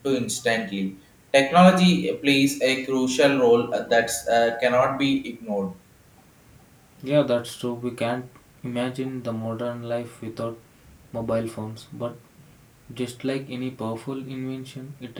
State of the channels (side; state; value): both; identical; correlation 1.00